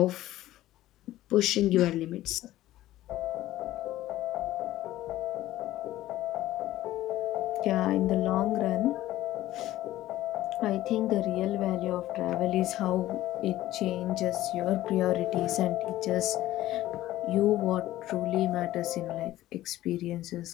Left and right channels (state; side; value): quieter; right; 15.0 dB